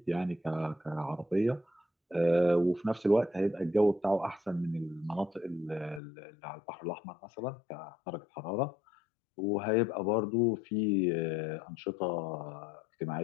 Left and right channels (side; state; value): right; drops out; at 6.0 s